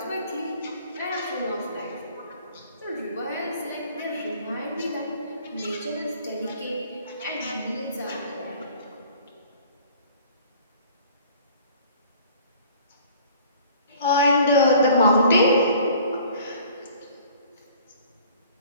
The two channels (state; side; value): inverted; both; correlation -0.51